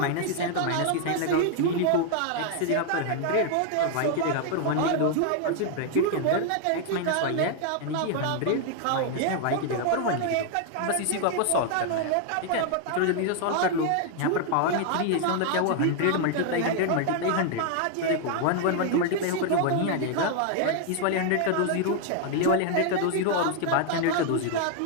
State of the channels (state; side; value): different; both; correlation 0.00